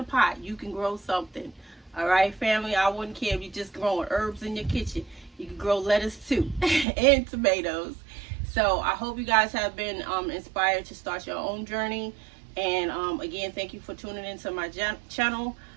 pot, you can grow something. All right, family. I wouldn't care if you're just growing herbs in your kitchen. You can grow lettuce too, and tomatoes. So I hope you guys have been inspired to start your own journey. And again, thank you for tuning into my channel.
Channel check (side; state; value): left; drops out; at 6.9 s